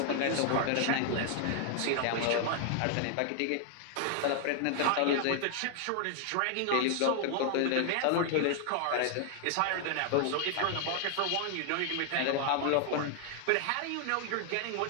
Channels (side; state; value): both; different; correlation 0.00